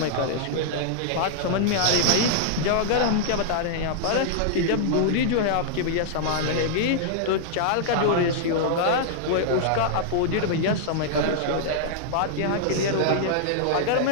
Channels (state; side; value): different; both; correlation -0.01